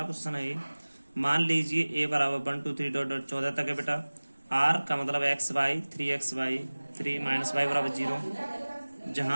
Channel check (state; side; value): inverted; both; correlation -1.00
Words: क्वेश्चन है ये। मान लीजिए a बराबर 1 2 3 डॉट डॉट 14 तक है बेटा। r का मतलब एक्स वाई 3 3 माइनस वाई बराबर 0।